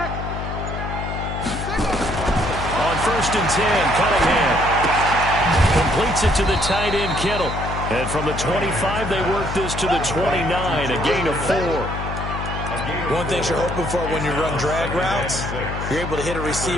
On 1st and 10, Cunningham completes it to the tight end, Kittle. And from the 25, they work this to the 29, a gain of 4. One thing you're hoping for when you run drag routes, you're able to hit a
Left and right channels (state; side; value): noise; left; hum, 5 dB below the sound